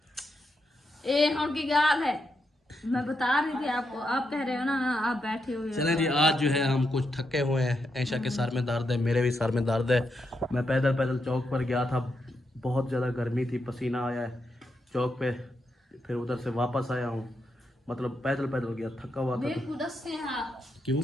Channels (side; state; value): both; normal; correlation 0.83